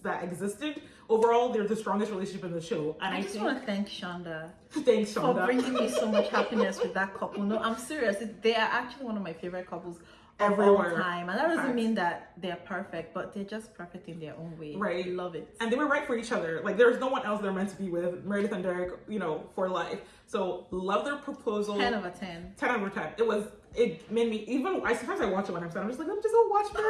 existed. Overall, they're the strongest relationship in the show. And I just want to thank Shonda. Thanks, Shonda. For bringing me so much happiness with that couple. No, I'm serious. They are actually one of my favorite couples of all time. And that doesn't mean that they're perfect, but they're just perfect in their own way. Right. I love it. And they were right for each other. Like, there's no one else they're meant to be with. Meredith and Derek, for life. So, love their proposal. 10 over 10. 10 over 10. It made me, sometimes I watch it when I'm sad. I'm just like, let me just go watch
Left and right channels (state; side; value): identical; both; correlation 1.00